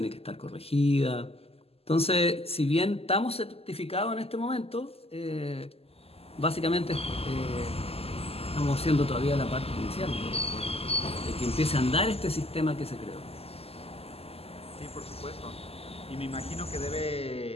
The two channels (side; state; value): right; late; 0.29 ms